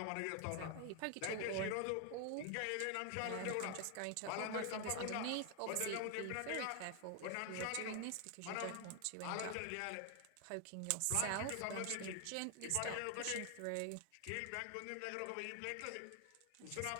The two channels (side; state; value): both; different; correlation 0.00